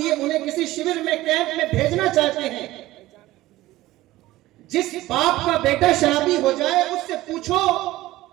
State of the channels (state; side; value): quieter; left; 16.9 dB